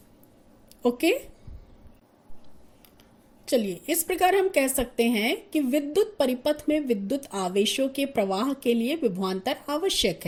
ओके, चलिए इस प्रकार हम कह सकते हैं कि विद्युत परिपथ में विद्युत आवेशों के प्रवाह के लिए विभवांतर आवश्यक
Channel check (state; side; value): identical; both; correlation 1.00